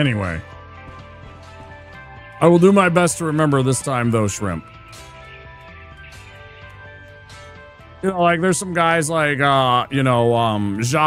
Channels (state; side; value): identical; both; correlation 1.00